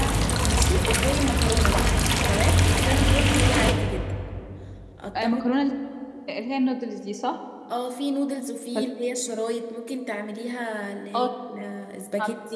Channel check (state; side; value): identical; both; correlation 1.00